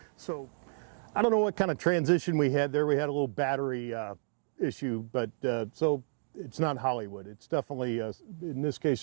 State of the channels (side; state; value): left; silent; digital silence